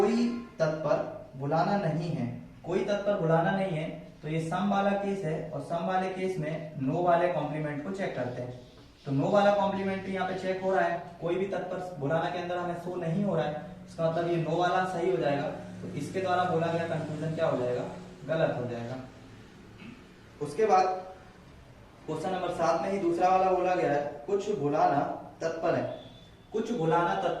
तत्पर भुलाना नहीं है, कोई तत्पर भुलाना नहीं है, तो ये सम वाला केस है, और सम वाले केस में नो वाले कॉम्प्लीमेंट को चेक करते हैं। तो नो वाला कॉम्प्लीमेंट्री यहाँ पे चेक हो रहा है, कोई भी तत्पर भुलाना के अंदर हमें शो नहीं हो रहा है, इसका मतलब ये नो वाला सही हो जाएगा, तो इसके द्वारा बोला गया कंक्लूजन क्या हो जाएगा, गलत हो जाएगा। उसके बाद क्वेश्चन नंबर 7 में ही दूसरा वाला बोला गया है, कुछ भुलाना तत्पर है, कुछ भुलाना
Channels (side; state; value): both; identical; correlation 1.00